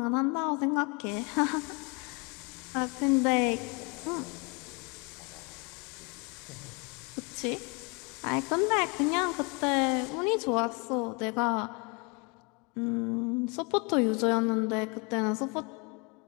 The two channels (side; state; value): right; quieter; 31.6 dB